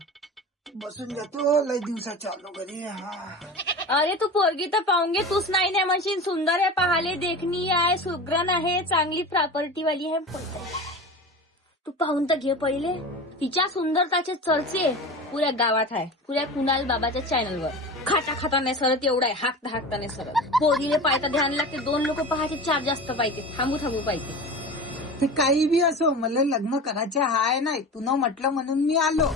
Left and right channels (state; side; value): normal; both; correlation 0.31